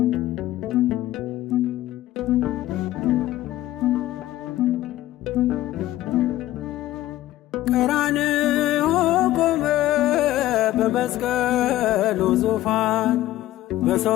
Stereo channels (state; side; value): quieter; right; 15.0 dB